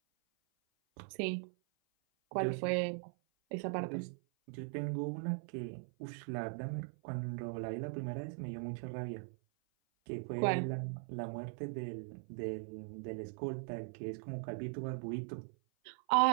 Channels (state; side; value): silent; left; 51 dB below the other